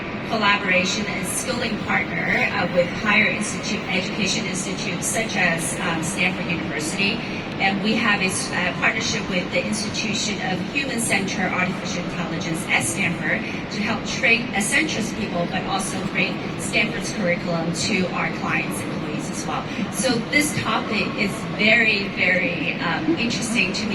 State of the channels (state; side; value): identical; both; correlation 1.00